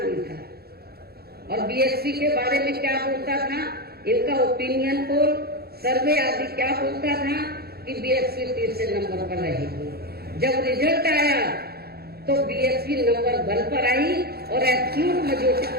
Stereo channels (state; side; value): late; left; 0.46 ms